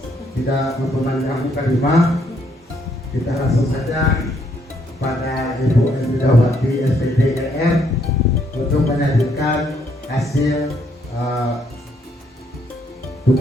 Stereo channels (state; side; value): normal; both; correlation 0.71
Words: tidak memperpanjang kalimat, kita langsung saja pada Ibu Emidawati SPTGR untuk menyajikan hasil